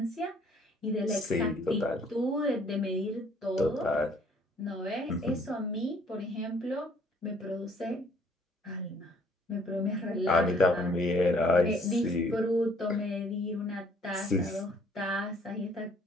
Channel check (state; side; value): normal; both; correlation 0.61